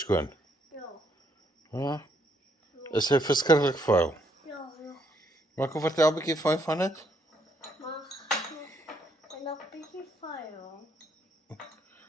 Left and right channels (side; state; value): both; normal; correlation 0.72